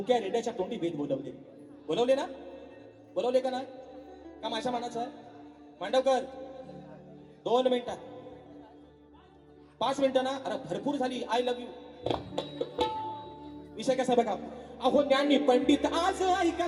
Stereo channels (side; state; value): both; identical; correlation 1.00